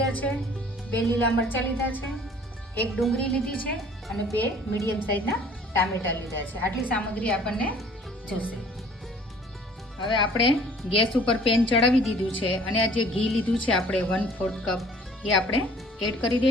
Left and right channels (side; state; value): both; normal; correlation 0.53